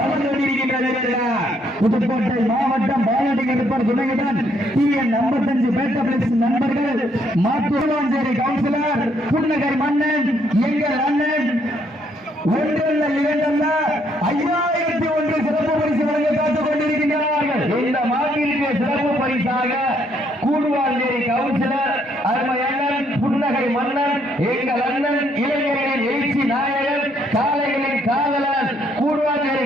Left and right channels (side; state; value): both; normal; correlation 0.70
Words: வந்து கொண்டிருக்கின்றன. புதுக்கோட்டை மாவட்டம் பாலாட்டி கருப்பர் துணையுடன் TN 55 பேட்ட பிளஸ் நண்பர்கள் மாத்தூர்வாஞ்சேரி கவுன்சிலர் புன்னகர் மன்னன் எங்கள் அண்ணன் ஒன்றல்ல இரண்டல்ல 5001 சிறப்பு பரிசு வழங்க காத்துக் கொண்டிருக்கின்றார்கள். இந்த மாநில சிறப்பு பரிசாக கூடுவாஞ்சேரி கவுன்சிலர் அருமை அண்ணன் புன்னகை மன்னன் எங்கள் அண்ணன் இளைஞர்களின் எழுச்சி நாயகன் காளைகளின் காதலன் கூடுவாஞ்சேரி